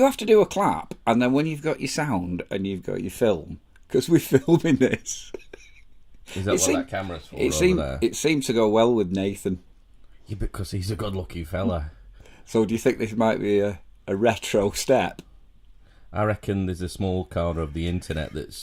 have to do a clap, and then when you've got your sound and you've got your film, because we're filming this. is that what that camera's for there? It seemed to go well with Nathan. Yeah, because he's a good-looking fella. So do you think this might be a retro step? I reckon there's a small corner of the internet that's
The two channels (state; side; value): identical; both; correlation 1.00